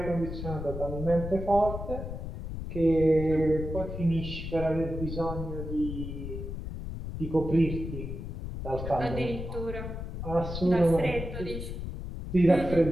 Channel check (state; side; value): noise; left; rumble, 7 dB below the sound